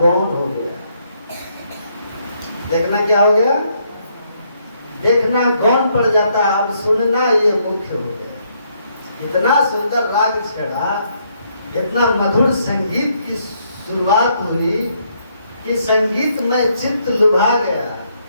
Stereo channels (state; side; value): inverted; both; correlation -0.72